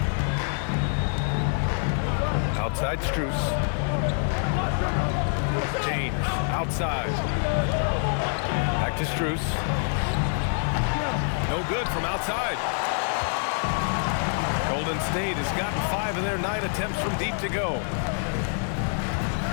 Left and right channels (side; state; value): right; silent; 58 dB below the other